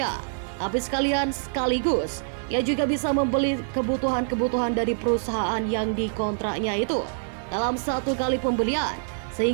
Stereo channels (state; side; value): silent; left; digital silence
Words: tapi sekaligus ia juga bisa membeli kebutuhan-kebutuhan dari perusahaan yang dikontraknya itu dalam satu kali pembelian,